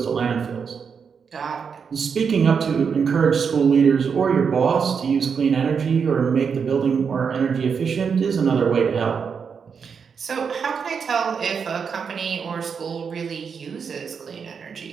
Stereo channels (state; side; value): quieter; left; 6.3 dB